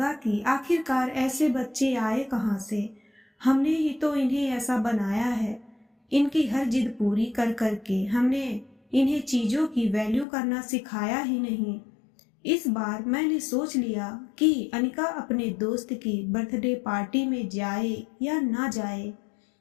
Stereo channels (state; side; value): drops out; right; at 10.2 s